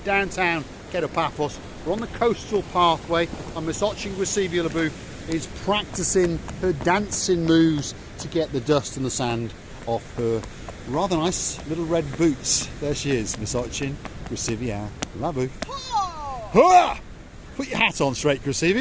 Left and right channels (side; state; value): both; identical; correlation 1.00